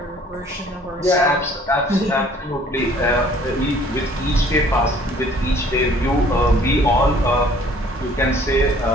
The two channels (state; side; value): normal; both; correlation 0.56